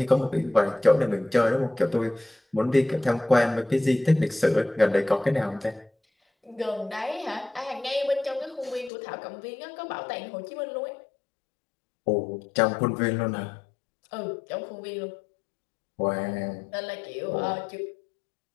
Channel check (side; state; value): right; drops out; at 8.9 s